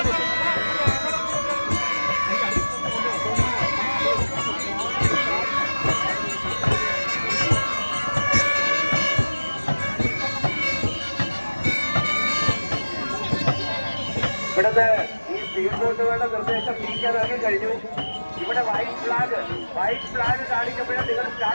ഇവിടുത്തെ ഈ സ്പീഡ് ബോട്ടുകളുടെ നിർദ്ദേശം നീക്കാനാക്കി കഴിഞ്ഞു. ഇവിടെ വൈറ്റ് ഫ്ലാഗ് കാണിക്കുമ്പോഴേ നിങ്ങൾ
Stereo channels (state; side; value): inverted; both; correlation -1.00